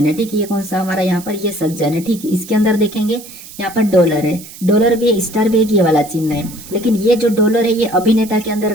है। ठीक है, ये कौन सा हमारा यहाँ पर ये सज्जन है। ठीक है, इसके अंदर देखेंगे यहाँ पर डॉलर है, डॉलर भी है, स्टार भी है, ये वाला चिन्ह है। लेकिन ये जो डॉलर है ये अभिनेता के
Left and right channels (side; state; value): right; noise; hiss, 16 dB below the sound